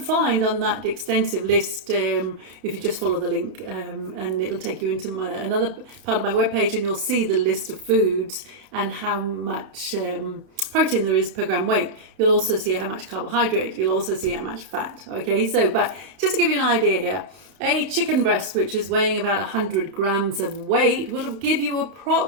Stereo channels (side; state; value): left; late; 31 ms